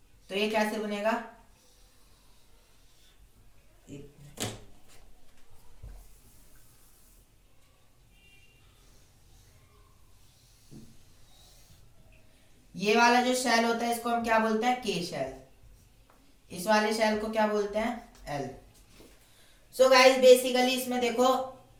तो ये कैसे बनेगा. ये वाला जो शेल होता है इसको हम क्या बोलते हैं, के शेल. इस वाले शेल को क्या बोलते हैं, एल. सो गाइस बेसिकली इसमें देखो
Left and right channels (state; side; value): identical; both; correlation 1.00